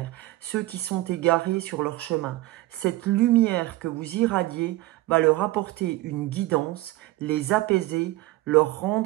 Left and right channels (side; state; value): left; quieter; 18.0 dB